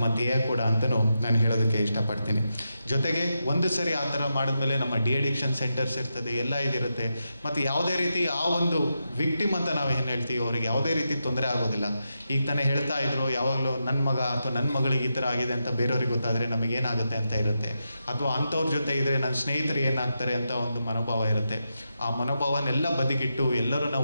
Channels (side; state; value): both; inverted; correlation -0.87